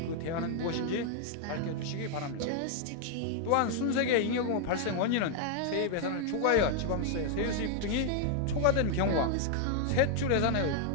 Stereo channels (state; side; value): different; both; correlation 0.00